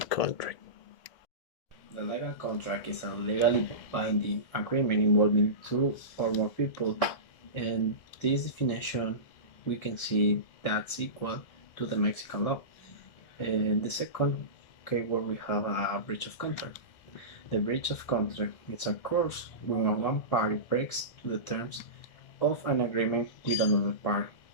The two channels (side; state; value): right; late; 1.6 ms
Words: contract. The legal contract is a legally binding agreement involving two or more people, and this definition we can see that's equal to the Mexican law. In the second keyword we have a breach of contract. The breach of contract is occurs when one party breaks the terms of an agreement with another party.